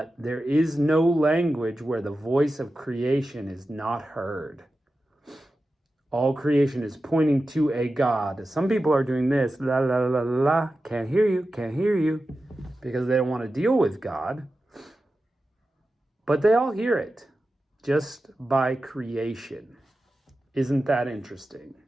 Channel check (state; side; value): normal; both; correlation 0.93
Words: there is no language where the voice of creation is not heard. All creation is pointing to a God. Some people are doing this, la la la la la, can't hear you, because they don't want to deal with God. But they all hear it, just by creation. Isn't that interesting?